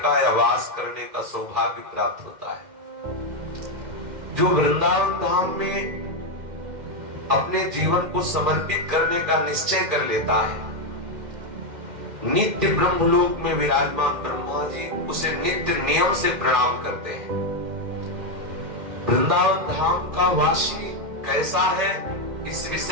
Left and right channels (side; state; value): left; late; 2.1 ms